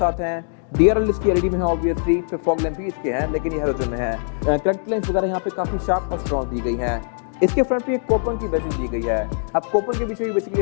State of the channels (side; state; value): right; silent; 64 dB below the other